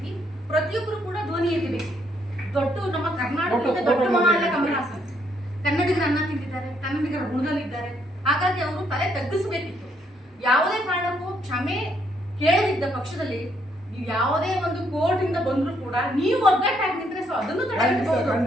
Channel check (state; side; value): normal; both; correlation 0.72